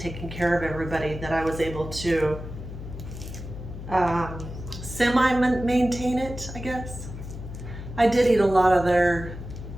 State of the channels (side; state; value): left; noise; hum, 10 dB below the sound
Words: care of everybody that I was able to semi-maintain it, I guess. I did eat a lot of their